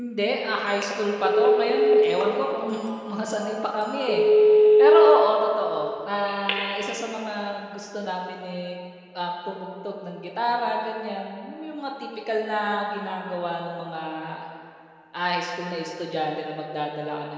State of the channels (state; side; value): identical; both; correlation 1.00